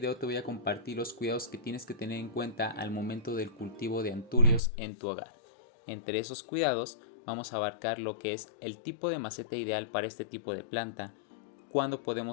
te voy a compartir los cuidados que tienes que tener en cuenta al momento del cultivo de anturios en tu hogar. Entre esos cuidados vamos a abarcar lo que es el tipo de maceta ideal para este tipo de planta, cuándo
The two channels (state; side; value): drops out; right; at 4.6 s